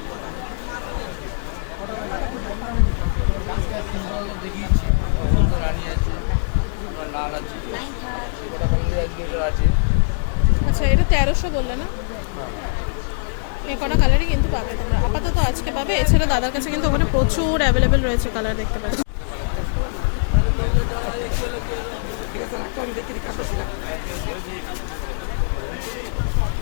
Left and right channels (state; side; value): silent; right; digital silence